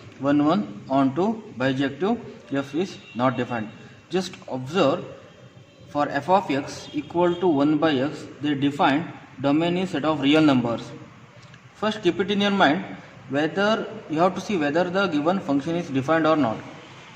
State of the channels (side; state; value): both; identical; correlation 1.00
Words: 1 1 on to bijective f is not defined. Just observe, for f of x equal to 1 by x, they define domain is set of real numbers. First keep it in your mind whether you have to see whether the given function is defined or not.